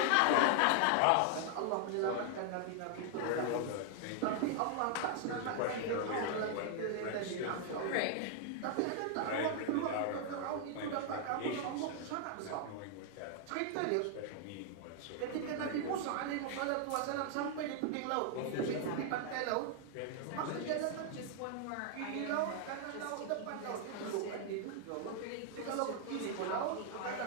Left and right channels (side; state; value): both; different; correlation 0.00